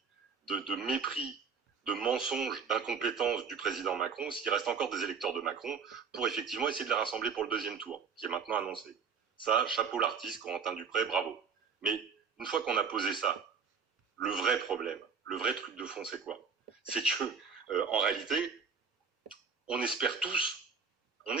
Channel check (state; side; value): quieter; left; 5.8 dB